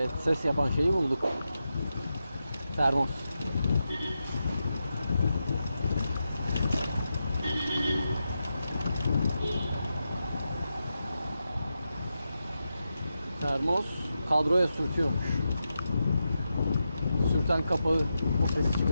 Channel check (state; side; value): inverted; both; correlation -0.88